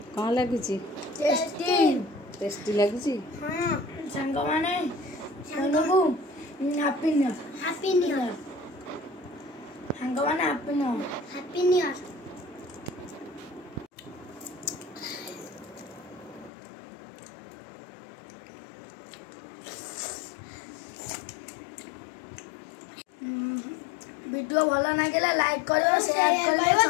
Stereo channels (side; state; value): right; drops out; at 16.5 s